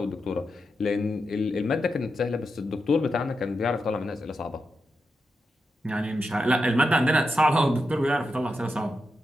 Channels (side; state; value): both; normal; correlation 0.87